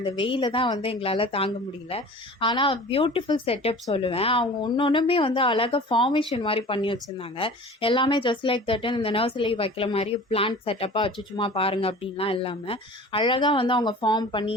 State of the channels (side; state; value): both; normal; correlation 0.41